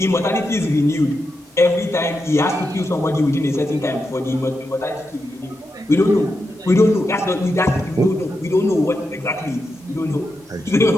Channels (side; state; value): both; normal; correlation 0.87